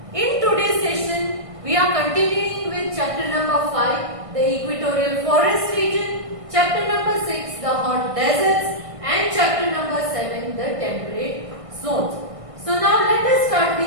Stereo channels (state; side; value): late; left; 1.6 ms